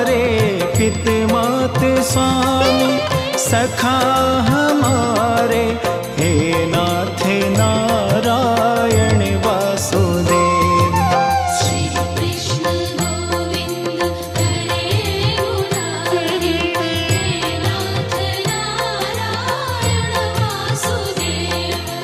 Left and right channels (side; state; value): both; identical; correlation 1.00